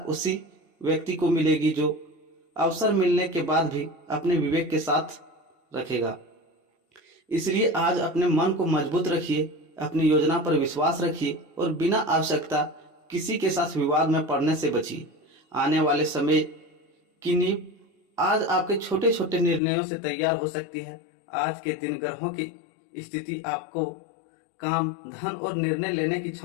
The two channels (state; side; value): drops out; right; at 19.6 s